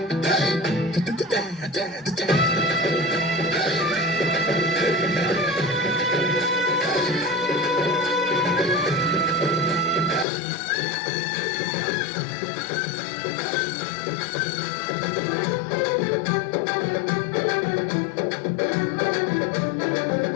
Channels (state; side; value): drops out; right; at 10.2 s